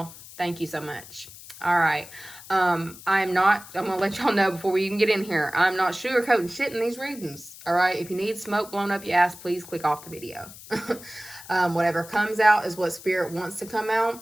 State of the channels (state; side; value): noise; left; hiss, 17 dB below the sound